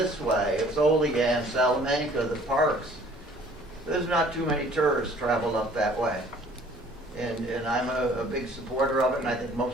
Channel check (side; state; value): both; normal; correlation 0.55